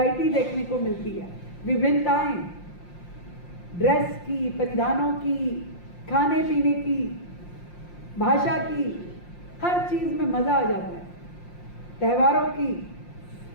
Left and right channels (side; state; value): right; late; 5.7 ms